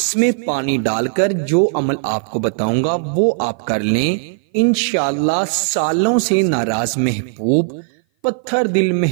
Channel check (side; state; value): left; silent; 57 dB below the other